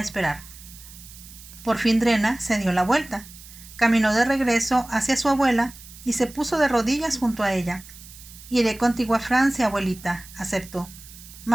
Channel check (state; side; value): noise; right; hiss, 18 dB below the sound